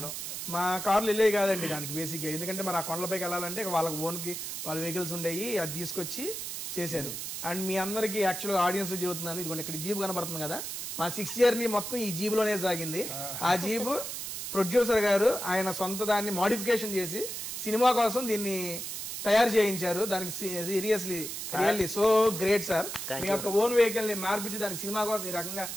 మా కార్లు వెళ్ళేవి కాదండి దానికి బేసిక్గా. ఎందుకంటే మరి ఆ కొండలపైకి వెళ్ళాలంటే వాళ్ళకి ఓన్కి వాళ్ళ వెహికల్స్ ఉండేవి, అది తీసుకొచ్చి చేశారు. అండ్ మీ అందరికీ యాక్చువల్గా ఆడియన్స్ చెబుతున్నాను, ఇదిగోండి ఇక్కడ జీప్ కనబడుతుంది కదా, మా 6 జర్నీ మొత్తం ఈ జీబ్లోనే సాగింది. ఆ జీబు ప్రొడ్యూసర్ గారు ఆయన సొంత దాన్ని మోడిఫికేషన్ చేసి సినిమా కోసం దీన్ని తయారు చేయించారు. దానికి రియల్లీ సో గ్రేట్ సార్. మీ యొక్క ఓన్ వెహికల్ని మార్పించి దానికి సినిమా కోసం ఈ రకంగా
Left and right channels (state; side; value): noise; right; hiss, 6 dB below the sound